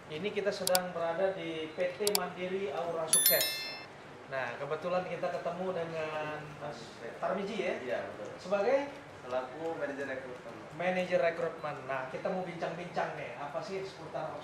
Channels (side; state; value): both; identical; correlation 1.00